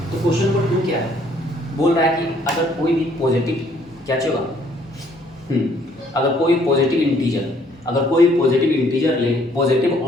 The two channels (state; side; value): normal; both; correlation 0.63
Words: तो क्वेश्चन नंबर 2 क्या है, बोल रहा है कि अगर कोई भी पॉजिटिव क्या चाहिए अगर कोई पॉजिटिव इंटीजर ले, पॉजिटिव